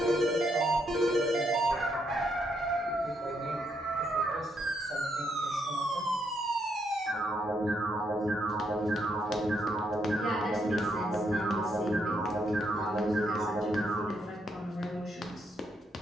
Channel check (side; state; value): both; normal; correlation 0.77